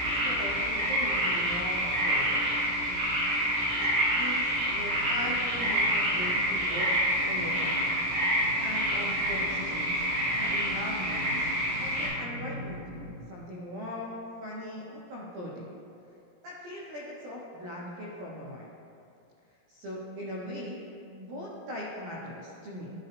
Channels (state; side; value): late; left; 17 ms